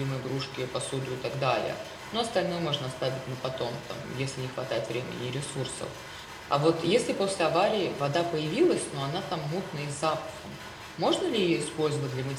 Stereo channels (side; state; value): both; identical; correlation 1.00